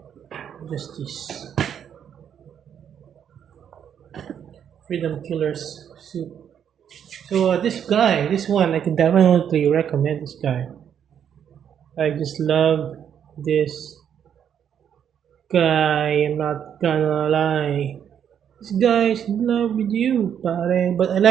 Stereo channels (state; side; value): quieter; left; 8.7 dB